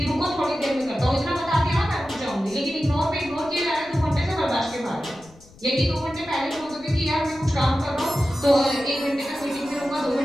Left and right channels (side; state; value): left; noise; rumble, 24 dB below the sound